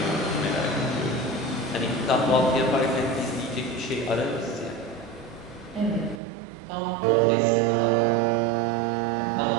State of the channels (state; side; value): drops out; left; at 6.2 s